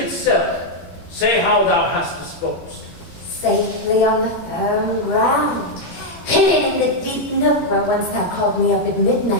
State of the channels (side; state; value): right; late; 17 ms